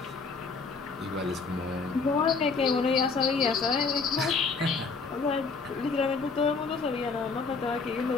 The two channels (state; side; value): quieter; right; 4.6 dB